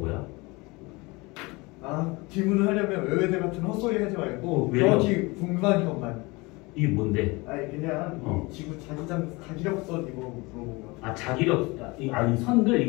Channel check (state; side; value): quieter; right; 24.7 dB